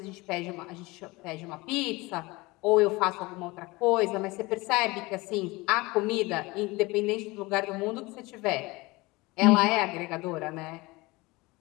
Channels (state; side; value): quieter; right; 22.6 dB